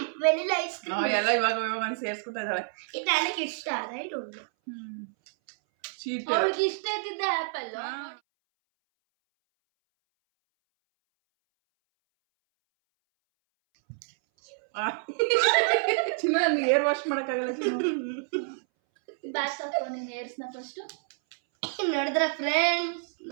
ಎಲ್ಲ ಇವಾಗ ಸೇರ್ಸ್ಕೊತಾ ಇದ್ದಾಳೆ. ಇದು ನನಗೆ ಇಷ್ಟ. I don't know. ಅವಳಿಗೆ ಇಷ್ಟ ಇದ್ದಿದ್ದ ಆಪಲ್. ಚಿನ್ನ ನನಗೆ ಏರ್ ವಾಶ್ ಮಾಡೋಕ್ಕಾಗಲ್ಲ ಚಿನ್ನ. ಬ್ಯಾಕ್ ಹಾಕೋ ನಿನ್ನ ಏರ್ಸ್ನ ಫಸ್ಟ್. ನೋಡಿದ್ರ ಫ್ರೆಂಡ್ಸ್,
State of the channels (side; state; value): left; silent; 59 dB below the other